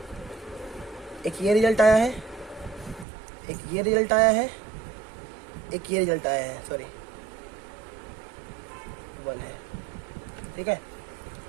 एक ये रिजल्ट आया है, एक ये रिजल्ट आया है, एक ये रिजल्ट आया है, सॉरी 1 है, ठीक है।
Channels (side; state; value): left; drops out; at 3.1 s